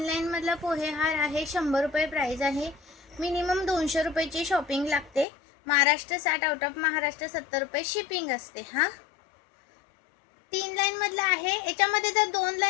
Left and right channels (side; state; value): right; drops out; at 5.2 s